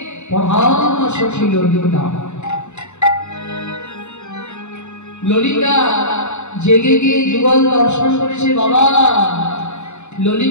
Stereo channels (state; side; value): late; right; 0.82 ms